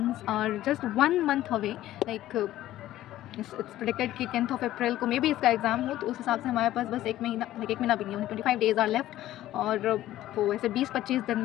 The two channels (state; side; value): quieter; right; 14.2 dB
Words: are just 1 month away. Like it's predicted कि 10th ऑफ अप्रैल को मे बी इसका एग्ज़ाम हो, तो उस हिसाब से हमारे पास बस 1 महीना, लाइक 1 महीना भी नहीं, 25 डेज़ आर लेफ्ट। और वो ऐसे 20-25 दिन